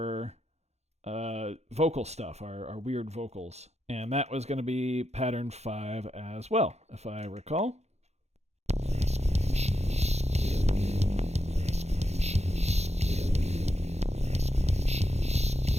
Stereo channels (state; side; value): late; left; 0.31 ms